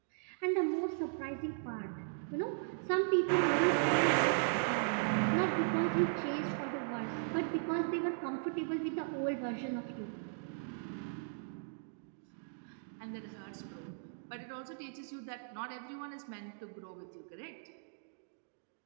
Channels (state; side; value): silent; left; digital silence